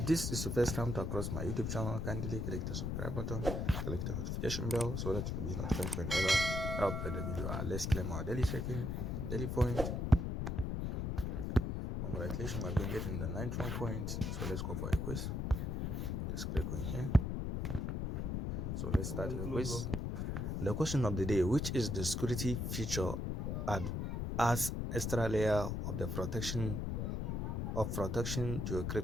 this is the first time to across my YouTube channel, kindly click the subscribe button, click the notification bell so that you will be notified whenever I upload the video. Let's claim our daily check-in, daily point. Congratulations, I've been getting the 91 points. So let's go for a quiz. Just click on here. So let's start the quiz. The question of the day: which is the security feature adds extra layer of the protection to a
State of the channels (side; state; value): left; noise; rumble, 1 dB below the sound